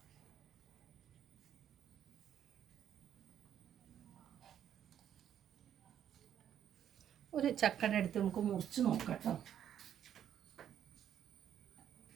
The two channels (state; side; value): quieter; left; 9.9 dB